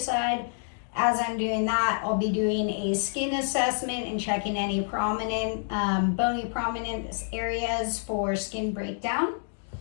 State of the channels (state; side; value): silent; right; digital silence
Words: As I'm doing that, I'll be doing a skin assessment and checking any prominent, bony prominent areas for skin breakdown.